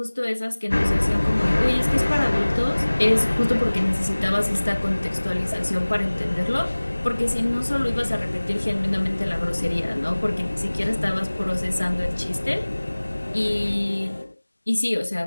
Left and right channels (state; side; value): inverted; both; correlation -1.00